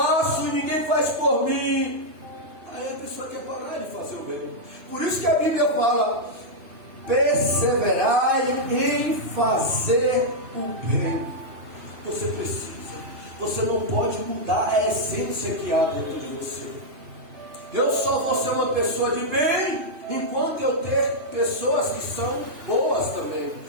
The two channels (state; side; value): late; left; 2.9 ms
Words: e ninguém faz por mim. Aí a pessoa quer parar de fazer o bem. Por isso que a Bíblia fala: perseverai em fazer o bem. Você precisa. Você não pode mudar a essência que há dentro de você. Eu só vou ser uma pessoa de bem enquanto eu ter pessoas que são boas também.